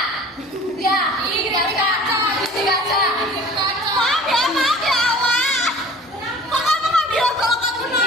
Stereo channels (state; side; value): normal; both; correlation 0.45